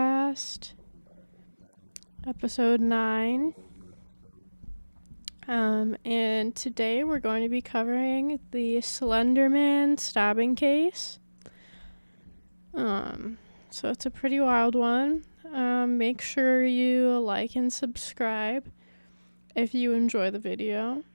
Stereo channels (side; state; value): both; inverted; correlation -1.00